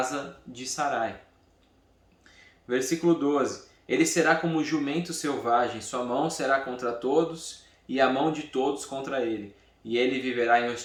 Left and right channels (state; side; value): identical; both; correlation 1.00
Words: de Sarai. Versículo 12. Ele será como jumento selvagem, sua mão será contra todos e a mão de todos contra ele. E ele viverá em